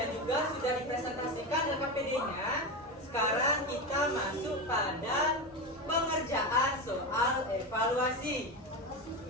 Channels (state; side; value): normal; both; correlation 0.18